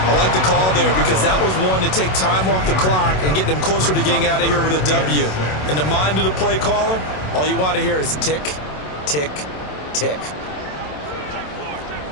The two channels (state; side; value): late; right; 27 ms